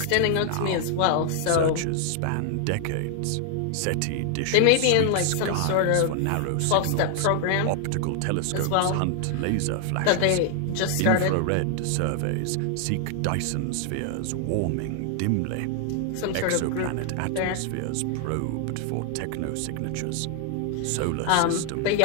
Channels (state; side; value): different; both; correlation 0.00